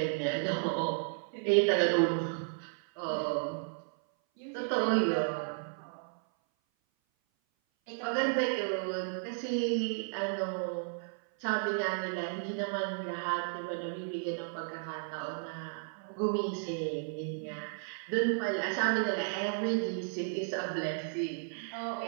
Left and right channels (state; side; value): silent; left; 55 dB below the other